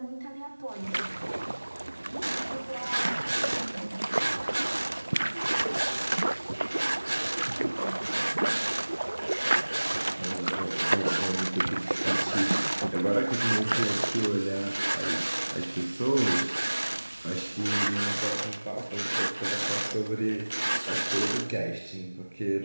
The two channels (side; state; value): both; inverted; correlation -1.00